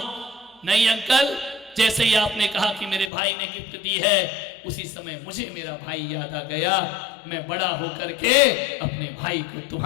नहीं अंकल, जैसे ही आपने कहा कि मेरे भाई ने गिफ्ट दी है, उसी समय मुझे मेरा भाई याद आ गया। मैं बड़ा होकर के अपने भाई को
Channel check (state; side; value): drops out; right; at 3.1 s